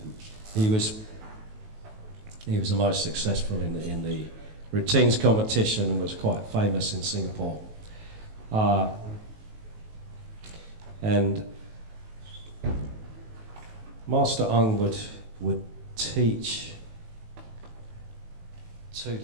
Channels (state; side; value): late; left; 19 ms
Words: He was the most successful in the routines competition and was quite famous in Singapore. And Master Ung would teach to